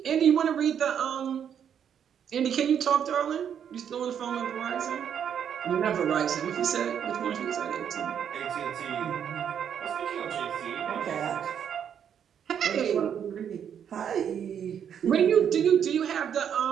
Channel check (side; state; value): left; quieter; 8.5 dB